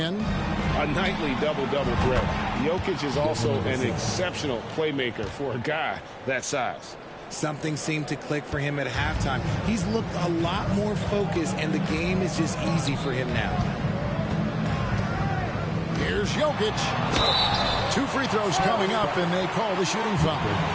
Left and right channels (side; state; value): both; identical; correlation 1.00